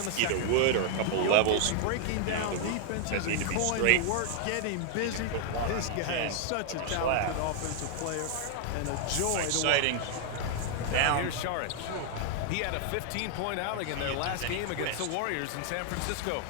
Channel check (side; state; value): both; different; correlation 0.00